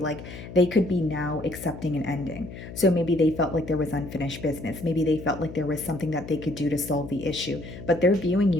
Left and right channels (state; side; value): noise; left; hum, 13 dB below the sound